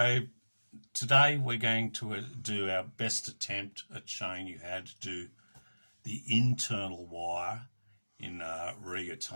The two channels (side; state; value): both; inverted; correlation -1.00